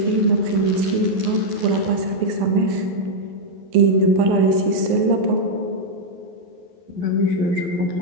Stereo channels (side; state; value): left; late; 11 ms